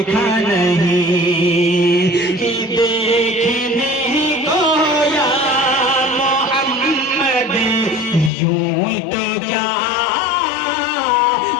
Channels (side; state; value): right; drops out; at 8.3 s